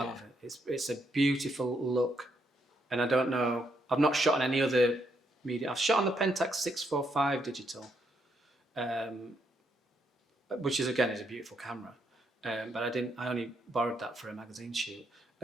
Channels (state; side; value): normal; both; correlation 0.77